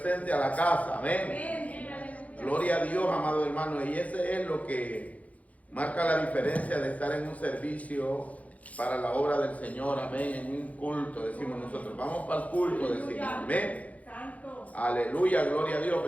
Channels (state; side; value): late; right; 0.069 ms